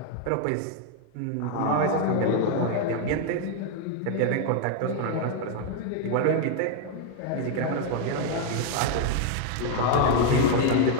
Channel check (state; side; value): different; both; correlation 0.00